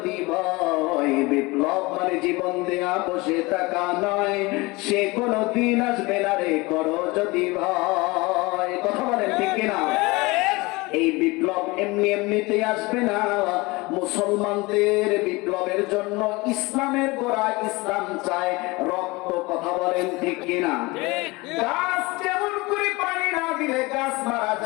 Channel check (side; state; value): right; quieter; 23.5 dB